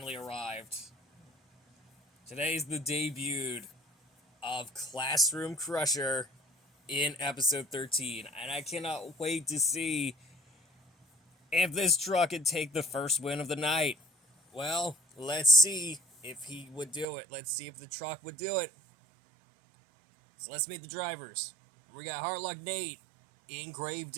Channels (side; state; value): left; drops out; at 17.1 s